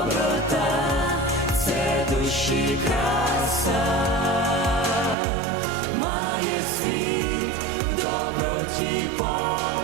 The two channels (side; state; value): left; drops out; at 5.2 s